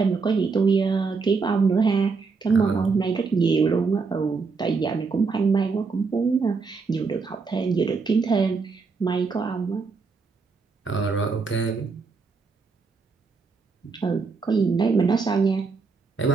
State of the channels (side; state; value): left; quieter; 4.7 dB